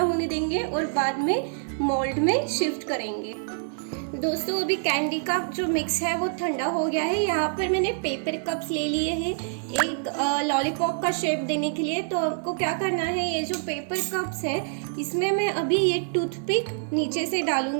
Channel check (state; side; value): silent; left; digital silence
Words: देंगे और बाद में मोल्ड में शिफ्ट करेंगे। दोस्तों अभी कैंडी का जो मिक्स है वो ठंडा हो गया है। यहाँ पर मैंने पेपर कप्स ले लिए हैं एक लॉलीपॉप का शेप देने के लिए। तो आपको क्या करना है, ये जो पेपर कप्स है इसमें मैं अभी ये टूथपिक नीचे से